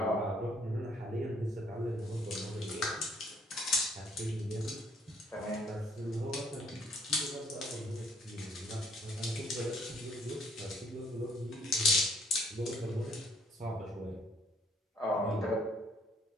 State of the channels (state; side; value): normal; both; correlation 0.63